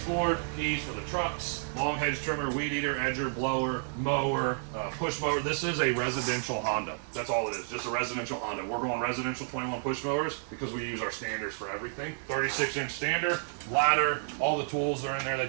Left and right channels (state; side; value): silent; left; digital silence